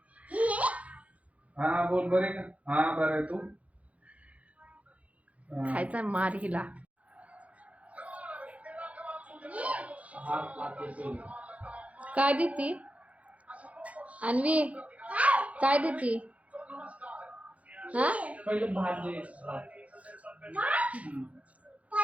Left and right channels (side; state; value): left; late; 0.066 ms